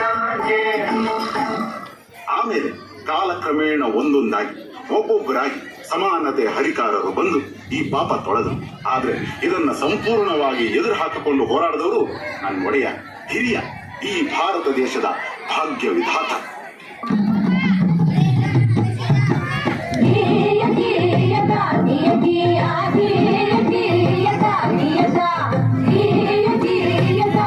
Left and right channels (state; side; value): identical; both; correlation 1.00